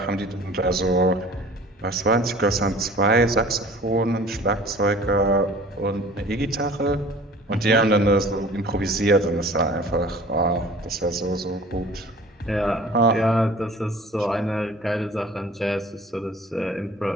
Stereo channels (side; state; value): both; normal; correlation 0.46